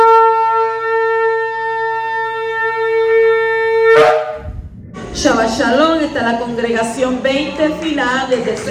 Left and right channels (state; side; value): identical; both; correlation 1.00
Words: Shalom, está la congregación 20 final desde el